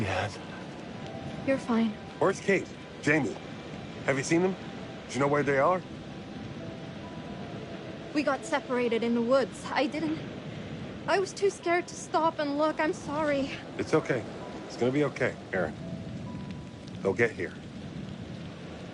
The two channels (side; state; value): both; identical; correlation 1.00